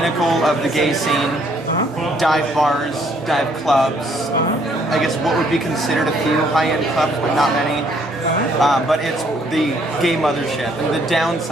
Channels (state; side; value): normal; both; correlation 0.66